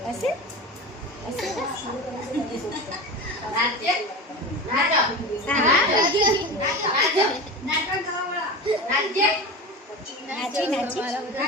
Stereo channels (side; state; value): both; normal; correlation 0.28